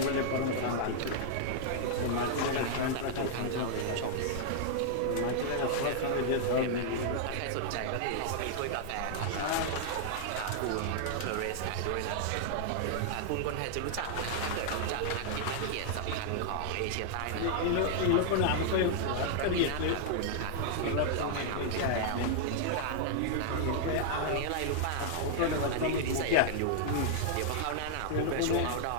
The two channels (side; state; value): both; different; correlation -0.01